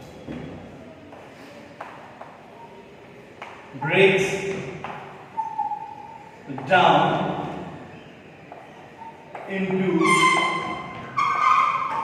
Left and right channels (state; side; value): identical; both; correlation 1.00